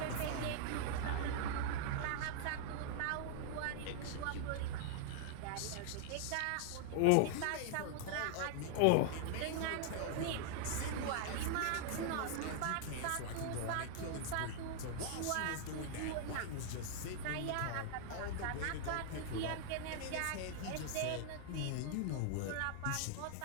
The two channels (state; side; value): different; both; correlation 0.00